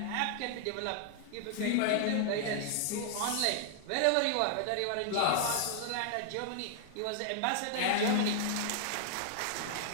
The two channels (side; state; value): both; different; correlation 0.00